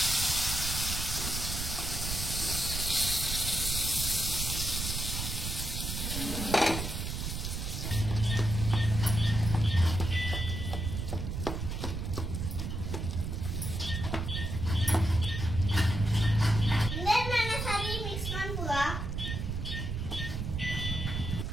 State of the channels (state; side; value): noise; right; rumble, 3 dB below the sound